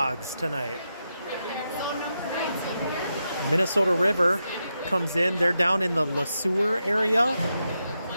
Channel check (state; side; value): inverted; both; correlation -0.86